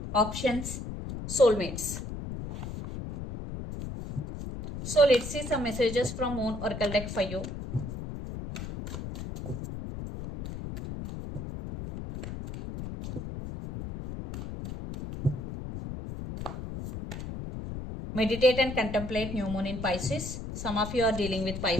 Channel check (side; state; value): left; noise; rumble, 7 dB below the sound